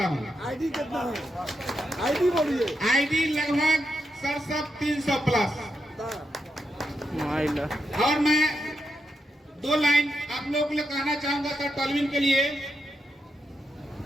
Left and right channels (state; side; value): normal; both; correlation 0.83